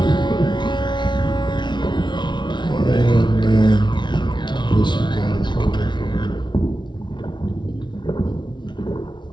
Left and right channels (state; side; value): late; right; 0.22 ms